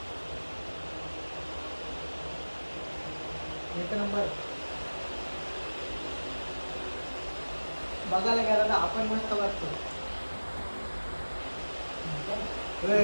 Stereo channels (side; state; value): both; inverted; correlation -1.00